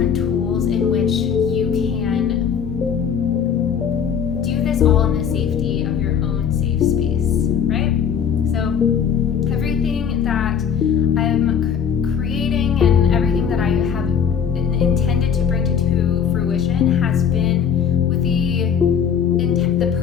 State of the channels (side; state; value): right; quieter; 7.6 dB